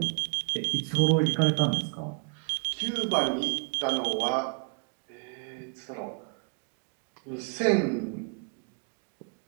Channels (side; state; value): left; quieter; 36.8 dB